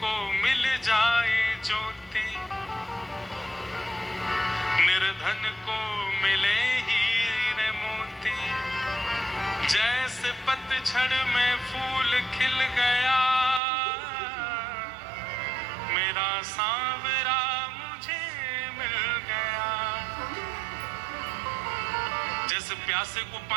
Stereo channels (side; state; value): left; drops out; at 13.6 s